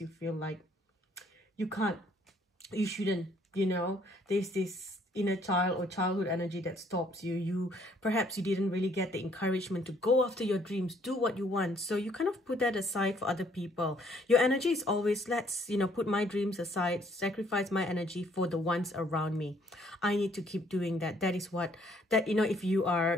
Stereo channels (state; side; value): normal; both; correlation 0.64